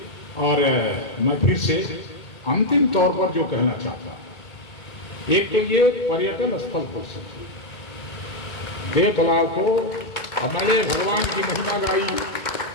और मैं फिर से अंतिम तौर पर जो कहना चाहता हूँ, एक तो ये पर्यटन स्थल हो सकता है, देव तालाब को हमारे भगवान की महिमा गाई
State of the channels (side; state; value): right; late; 2.3 ms